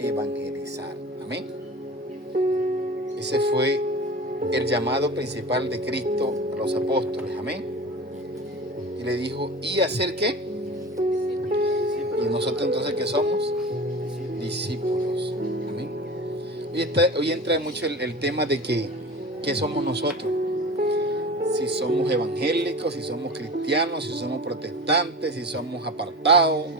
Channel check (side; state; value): both; normal; correlation 0.33